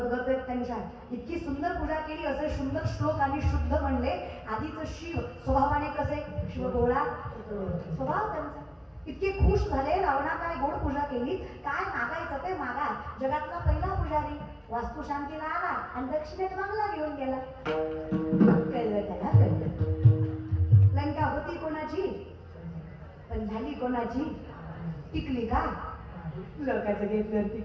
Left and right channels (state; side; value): identical; both; correlation 1.00